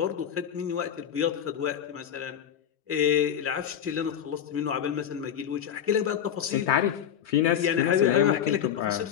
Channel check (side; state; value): right; quieter; 9.3 dB